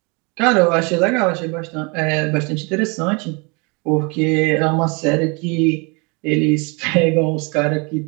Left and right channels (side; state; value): left; quieter; 30.7 dB